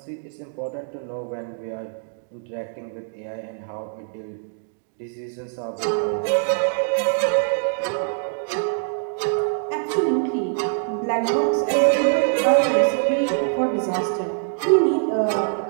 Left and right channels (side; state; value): left; silent; digital silence